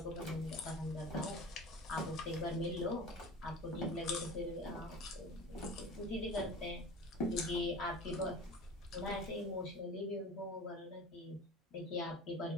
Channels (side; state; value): both; normal; correlation 0.38